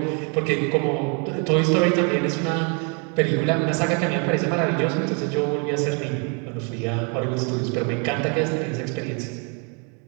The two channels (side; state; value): left; quieter; 36.3 dB